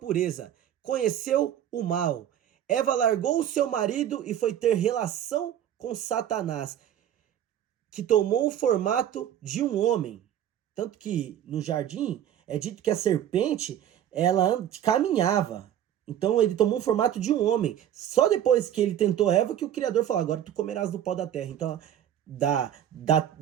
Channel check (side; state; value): left; quieter; 10.6 dB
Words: conheceu o mal. Eva largou o seu marido e foi ter relação com Satanás, que tomou o formato de um homem. Tanto que no jardim é dito que a serpente, ela caminhava. Então ele tomou o formato de um homem. Só depois que ele tentou Eva que o Criador falou: agora tu comerás do pó da terra. Então,